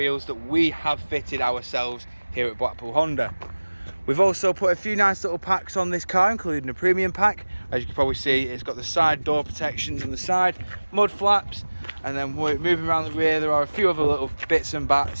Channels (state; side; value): inverted; both; correlation -1.00